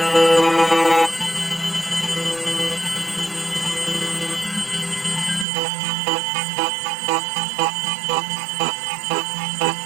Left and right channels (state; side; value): drops out; left; at 5.5 s